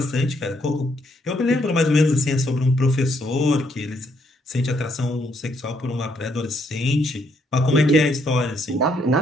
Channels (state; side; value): normal; both; correlation 0.73